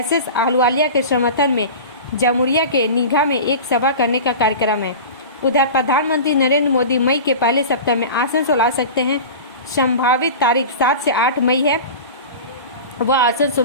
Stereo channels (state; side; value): inverted; both; correlation -0.32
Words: आहलूवालिया के समर्थन में जमुरिया के नीघा में एक सभा करने का कार्यक्रम है। उधर प्रधानमंत्री नरेंद्र मोदी मई के पहले सप्ताह में आसनसोल आ सकते हैं। संभावित तारीख 7 से 8 मई है। वह